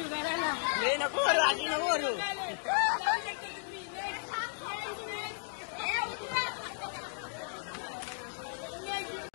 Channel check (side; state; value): right; silent; digital silence